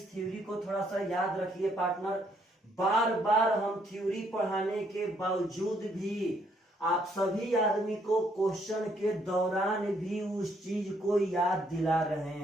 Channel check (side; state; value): both; normal; correlation 0.70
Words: थ्योरी को थोड़ा सा याद रखिए पार्टनर, बार बार हम थ्योरी पढ़ाने के बावजूद भी आप सभी आदमी को क्वेश्चन के दौरान भी उस चीज को याद दिला रहे